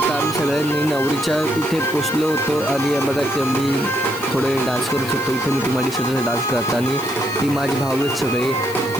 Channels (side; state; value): left; noise; hiss, 15 dB below the sound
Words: आम्ही सगळ्यांनी नवरीच्या इथे पोचलो होतो आणि बघा की मी थोडे डान्स करत होतो. इथे मी तुम्हाला दिसत डान्स करता आणि ती माझी भाऊ आहेत सगळे.